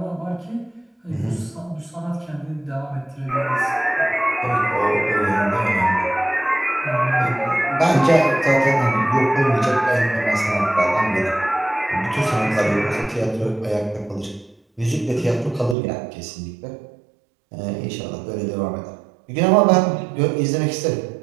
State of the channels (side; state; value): left; drops out; at 15.8 s